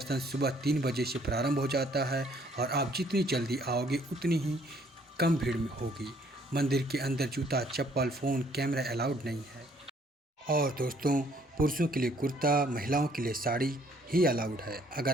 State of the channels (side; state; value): both; normal; correlation 0.63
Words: सुबह 3 बजे से प्रारंभ हो जाता है और आप जितनी जल्दी आओगे उतनी ही कम भीड़ में होगी। मंदिर के अंदर जूता, चप्पल, फ़ोन, कैमरा अलाउड नहीं है। और दोस्तों, पुरुषों के लिए कुर्ता, महिलाओं के लिए साड़ी ही अलाउड है।